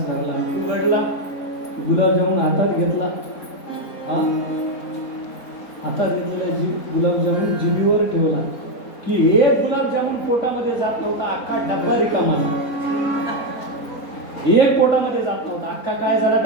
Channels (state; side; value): late; right; 4.0 ms